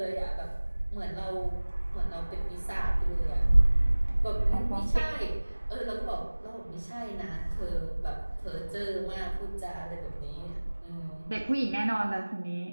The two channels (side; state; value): both; inverted; correlation -1.00